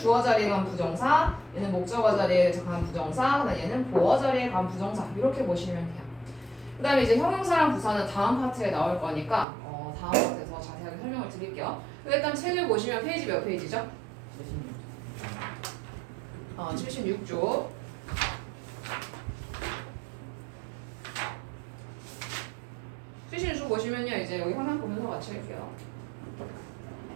자리에 간 부정사, 얘는 목적어 자리에 간 부정사, 그다음 얘는 보어 자리에 간 부정사. 이렇게 보시면 돼요. 그다음에 이제 형용사랑 부사는 다음 파트에 나올 거니까 다음 파트에서 자세하게 설명을 드릴게요. 일단 책을 보시면 페이지 몇 페이지죠? 76쪽. 76쪽 보시면요, 이제 여기 화면 보면서 같이 할게요.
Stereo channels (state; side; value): drops out; left; at 9.5 s